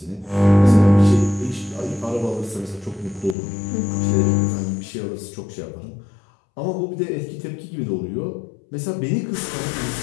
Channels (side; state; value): right; drops out; at 3.4 s